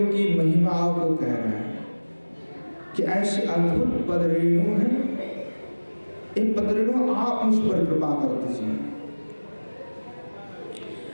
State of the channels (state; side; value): inverted; both; correlation -1.00